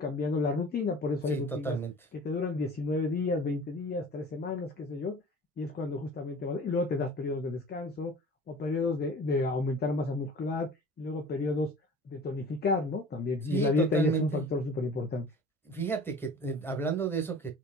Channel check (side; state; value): both; normal; correlation 0.43